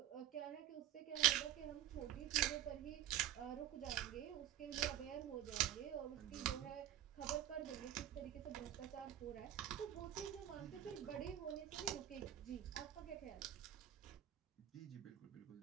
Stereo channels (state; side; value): quieter; left; 12.2 dB